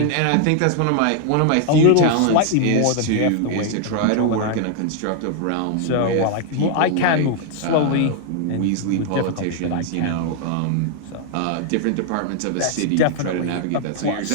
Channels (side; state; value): both; different; correlation 0.00